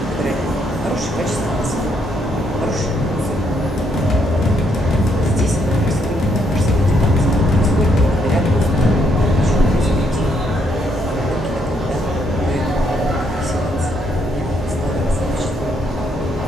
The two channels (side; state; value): both; normal; correlation 0.74